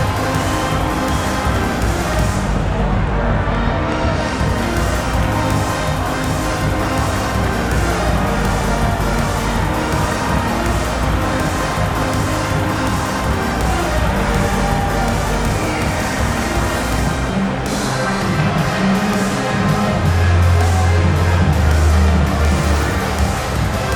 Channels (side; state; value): both; identical; correlation 1.00